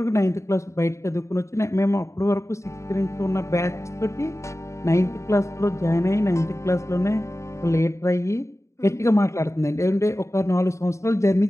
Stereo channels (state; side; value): late; right; 0.14 ms